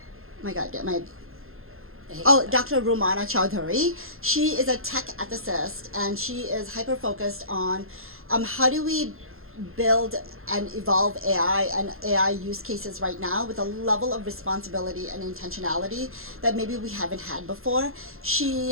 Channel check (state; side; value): late; left; 0.61 ms